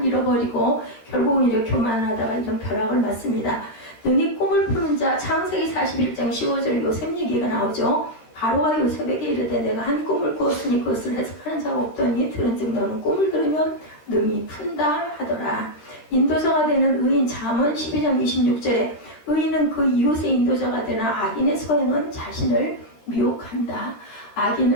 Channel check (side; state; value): right; late; 13 ms